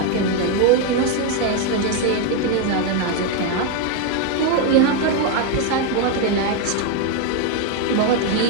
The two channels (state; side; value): different; both; correlation 0.02